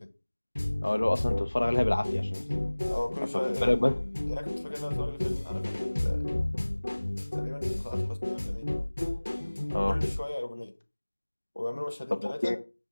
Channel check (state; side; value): inverted; both; correlation -1.00